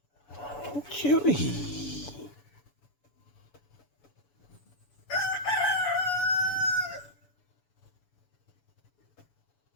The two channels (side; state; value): right; late; 7.0 ms